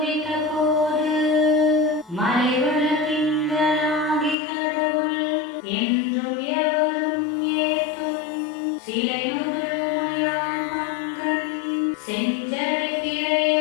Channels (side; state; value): right; drops out; at 4.4 s